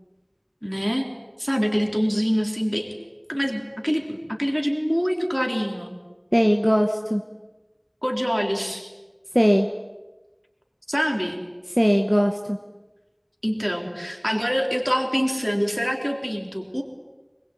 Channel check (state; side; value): identical; both; correlation 1.00